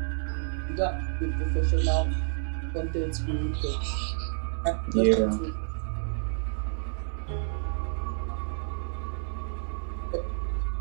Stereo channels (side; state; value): left; silent; 58 dB below the other